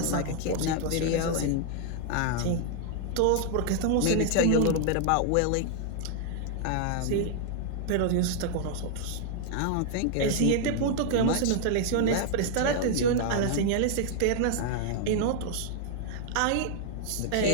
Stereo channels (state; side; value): different; both; correlation 0.00